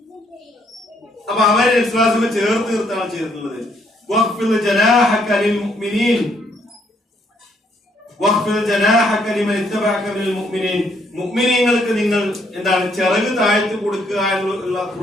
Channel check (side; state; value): both; normal; correlation 0.70